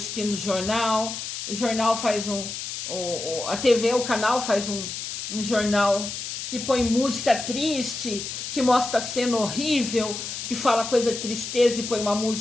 o jornal faz a TV, o canal faz um jornal que põe música triste, que mostra cena horrível, que fala coisa de tristeza e põe uma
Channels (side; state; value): left; noise; hiss, 6 dB below the sound